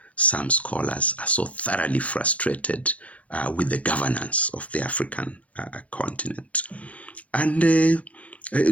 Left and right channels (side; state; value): right; late; 0.065 ms